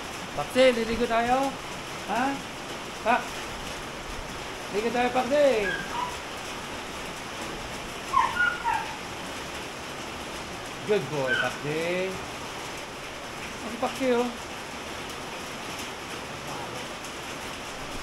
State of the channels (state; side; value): identical; both; correlation 1.00